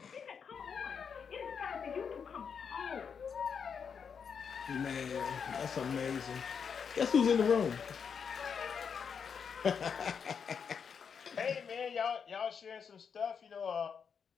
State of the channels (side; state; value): right; quieter; 6.6 dB